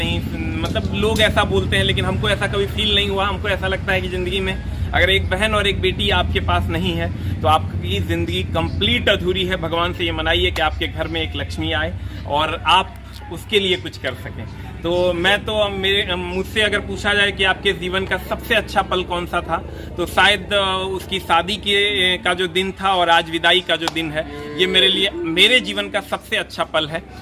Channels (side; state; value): both; identical; correlation 1.00